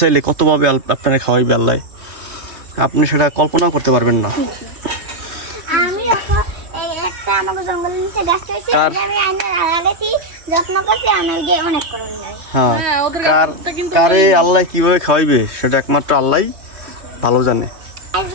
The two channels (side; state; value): left; late; 3.1 ms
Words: কতভাবে আপনারা খাওয়াইবে আল্লাহ, আপনি সেটা কল্পনাও করতে পারবেন না। আমি একটা আমাকে জঙ্গলের নিচে গাছ হয়েছে, আমি আইনে লাগাইছি, যত্ন করছি, আমি ওই যে অনেক করে নিই। হ্যাঁ, হ্যাঁ, ওদের কার গাছটা কিন্তু কারে আল্লাহ কিভাবে খাওয়াইবে সেটা একমাত্র আল্লাহই ভালো জানে।